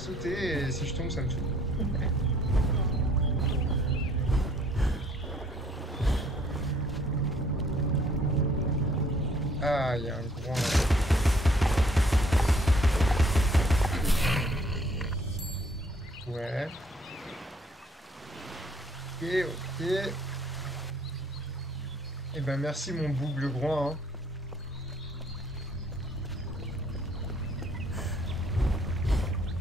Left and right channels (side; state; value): both; normal; correlation 0.62